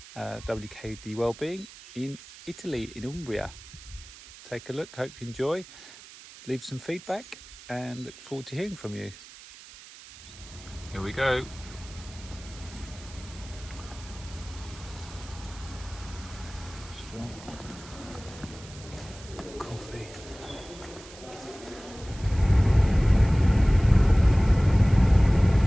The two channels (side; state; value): right; noise; hiss, 18 dB below the sound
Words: WKD Wellbeing, in Italy, in Umbria. Take a look, hope you enjoy, leave some feedback and look forward to hearing from you. Here we go. Coffee.